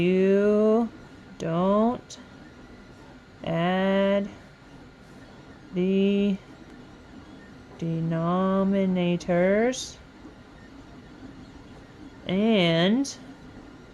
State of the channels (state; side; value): identical; both; correlation 1.00